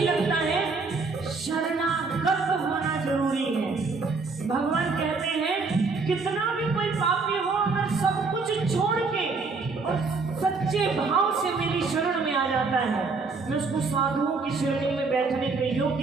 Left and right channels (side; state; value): left; quieter; 4.2 dB